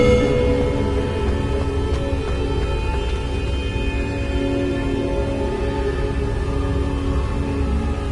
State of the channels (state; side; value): identical; both; correlation 1.00